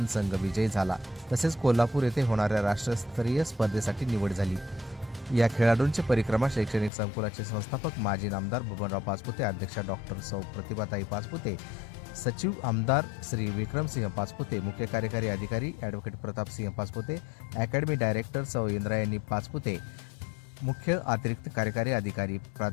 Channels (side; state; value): right; drops out; at 6.9 s